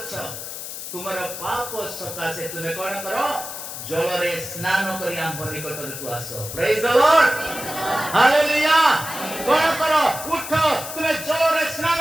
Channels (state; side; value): noise; left; hiss, 9 dB below the sound